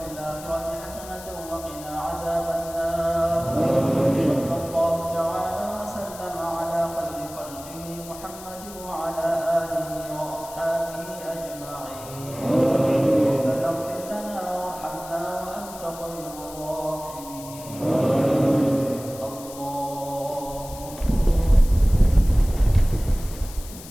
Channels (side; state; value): left; noise; hiss, 16 dB below the sound